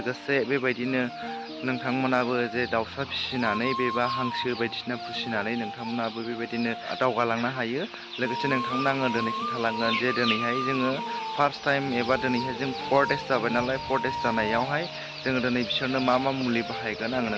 बेबायदिनो नोंथांमोनाबो जे दाउसा फिसिनानै बेबा हांसो बायदिसिना फिसिनानै नोंथांमोनाबो बेबायदिनो दावगालांनो हायो। लोगोसे नोंथांमोना आङो दिनै खिन्थालांगोन जे दिनैहाय जोङो फार्स्ट टाइम एबा दिनैहाय जों 4 days जाबाय नालाय, 4 days जानायावहाय जोङो दिनै बिसोरनो मा मुलि बाहायगोन आङो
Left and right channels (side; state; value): both; identical; correlation 1.00